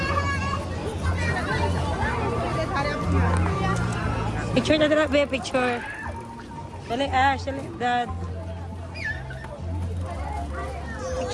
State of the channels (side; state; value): both; identical; correlation 1.00